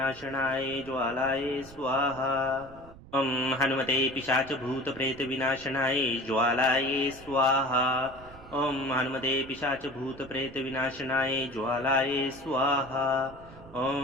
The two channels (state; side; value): noise; right; rumble, 20 dB below the sound